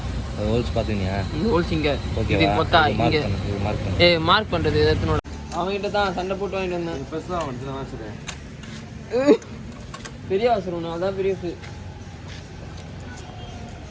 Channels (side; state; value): both; identical; correlation 1.00